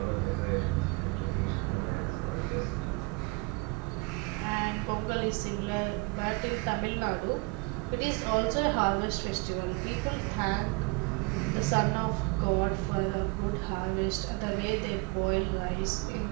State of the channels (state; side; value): quieter; left; 27.5 dB